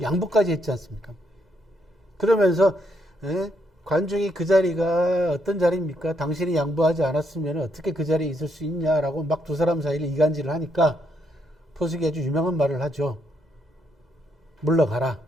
양보까지 했지 않습니까? 그러면서 관중이 그 자리가 어떤 자리입니까? 당신이 양보하지 않았으면 어떻게 그 자리에 있을 수 있냐라고 막 두 사람 사이를 이간질을 하니까, 포숙이 아주 유명한 말을 하죠. 물러가라.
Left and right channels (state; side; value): normal; both; correlation 0.75